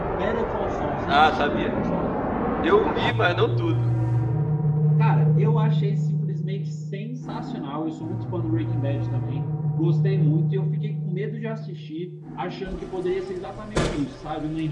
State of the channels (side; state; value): both; identical; correlation 1.00